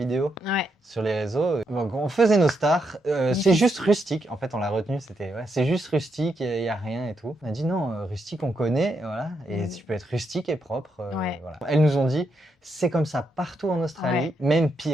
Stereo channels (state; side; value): normal; both; correlation 0.80